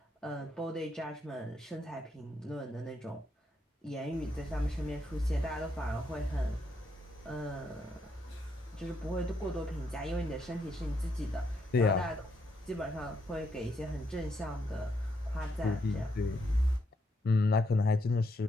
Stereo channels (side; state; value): both; normal; correlation 0.77